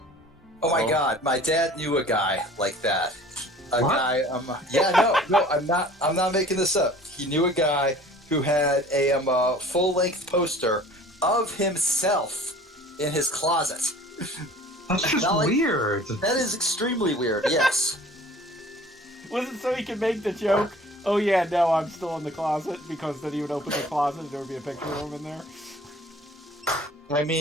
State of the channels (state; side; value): normal; both; correlation 0.47